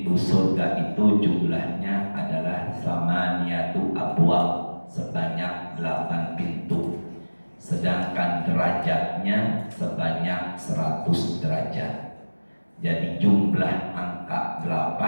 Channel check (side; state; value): both; inverted; correlation -1.00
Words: surga itu jumlahnya adalah samaniyatu abwab, sebanyak 8 pintu. Sedangkan derajatnya sebanyak 100 derajat. Jadi jumlah angka